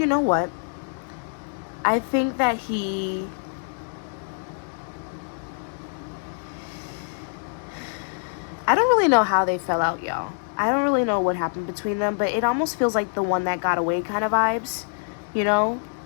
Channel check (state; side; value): silent; right; digital silence